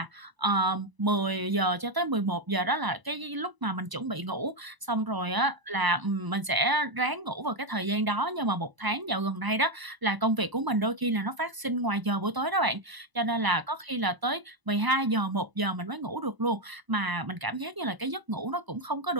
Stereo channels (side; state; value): left; late; 1.0 ms